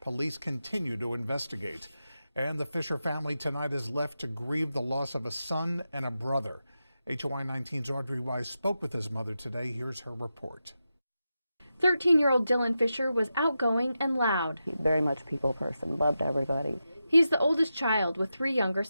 Police continue to investigate. And the Fisher family tonight is left to grieve the loss of a son and a brother. HOI 19's Audrey Wise spoke with his mother today. Here's her report. 13-year-old Dylan Fisher was outgoing and loud. He's very much a people person, loved everybody. He's the oldest child with 3 younger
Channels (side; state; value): both; inverted; correlation -0.90